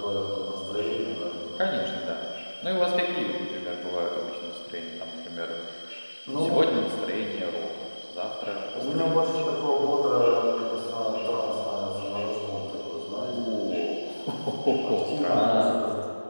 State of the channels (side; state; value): both; inverted; correlation -1.00